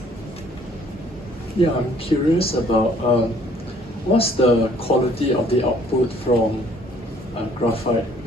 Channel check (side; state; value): both; normal; correlation 0.60